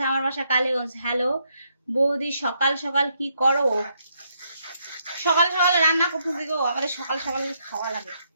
আমার বাসা কালীগঞ্জ। হ্যালো বৌদি, সকাল সকাল কি করো? সকাল সকাল রান্না করতেছি গো, আমাদের সকাল সকাল খাওয়া লাগে।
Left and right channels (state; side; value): inverted; both; correlation -0.75